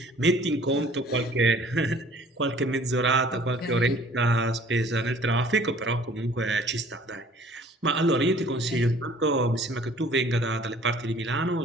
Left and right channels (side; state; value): both; normal; correlation 0.52